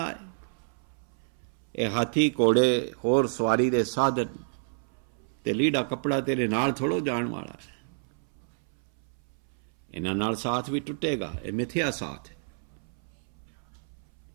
है। ये हाथी घोड़े होर सवारी दे साधन ते लीड़ा कपड़ा तेरे नाल थोड़ो जाण वाला है। इन्हां नाल साथ भी टुटेगा। ये मिथ्या साथ है।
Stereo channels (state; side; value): silent; left; 58 dB below the other